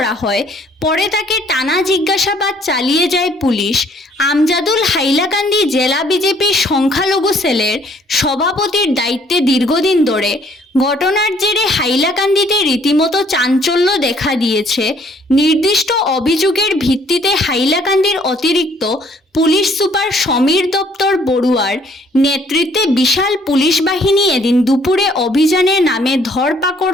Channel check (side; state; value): both; normal; correlation 0.62